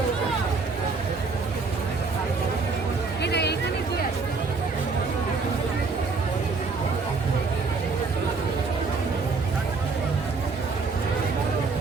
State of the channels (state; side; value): quieter; left; 4.3 dB